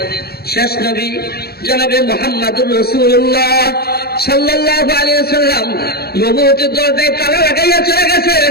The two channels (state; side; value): late; right; 0.46 ms